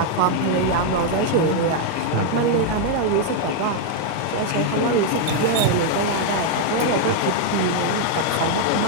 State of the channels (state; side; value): different; both; correlation 0.00